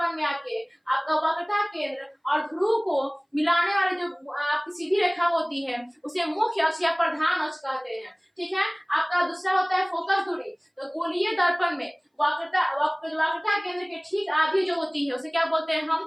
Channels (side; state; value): both; identical; correlation 1.00